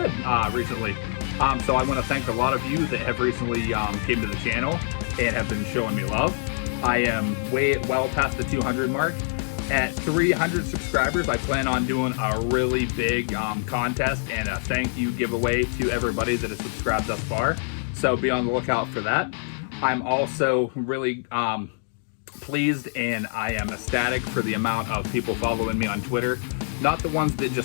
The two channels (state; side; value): silent; right; digital silence